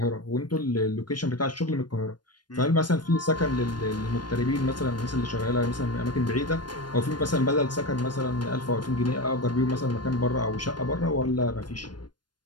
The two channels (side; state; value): right; late; 0.71 ms